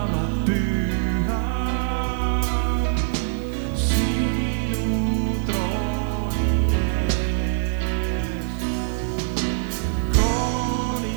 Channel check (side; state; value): left; silent; digital silence